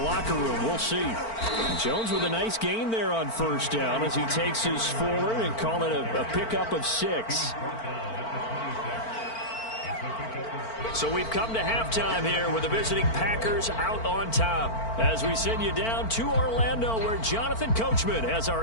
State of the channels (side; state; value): right; late; 4.4 ms